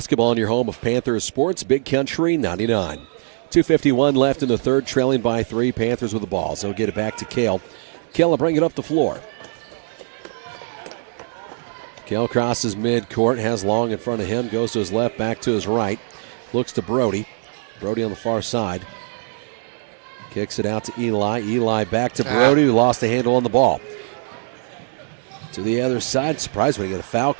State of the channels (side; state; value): left; silent; 63 dB below the other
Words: on your home of Panther Sports, Big Country 99. 2:51 left in the third, trailing by 3. Panthers with the ball. So get it back to Kale. Kale will bring it up the floor. Kale crosses midcourt, has Long in front of him, goes to his left, back to his right. Looks to Brody. Brody on the far side. Kicks it out to Eli. Eli back to Brody, who lost the handle on the ball. To the other side. Surprised when he got a foul